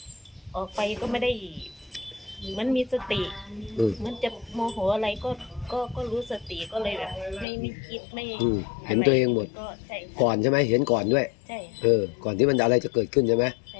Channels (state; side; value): drops out; right; at 7.5 s